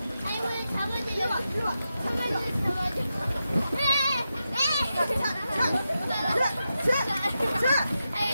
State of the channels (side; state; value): both; inverted; correlation -0.89